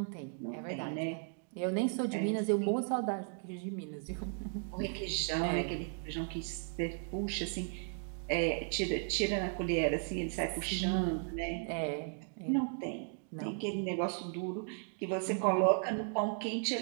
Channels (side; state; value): left; silent; 54 dB below the other